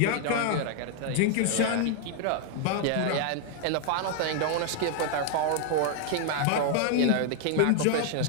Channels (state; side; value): different; both; correlation 0.00